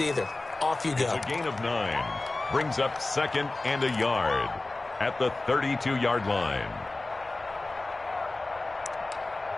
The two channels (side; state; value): right; quieter; 3.1 dB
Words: Off you go. A gain of 9 brings up 2nd and a yard at the 32-yard line.